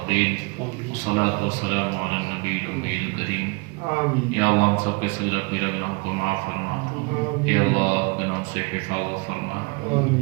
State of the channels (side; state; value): left; quieter; 29.3 dB